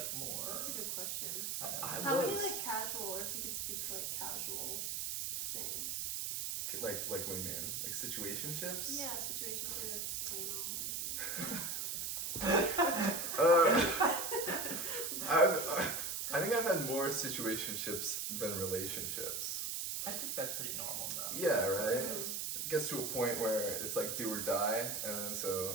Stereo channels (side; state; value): right; noise; hiss, 2 dB below the sound